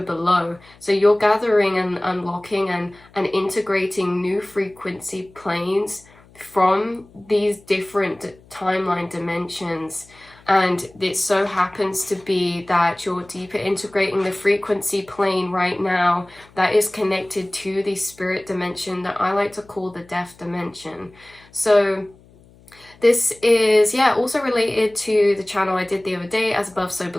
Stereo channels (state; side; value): noise; left; hum, 27 dB below the sound